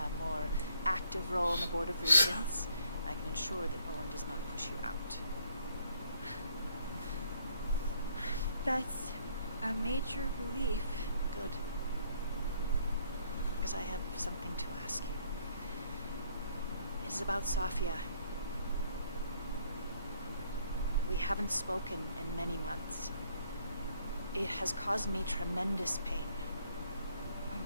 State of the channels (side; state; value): both; inverted; correlation -0.66